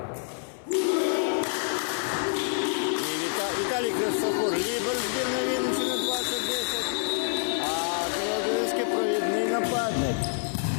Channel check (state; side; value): silent; right; 60 dB below the other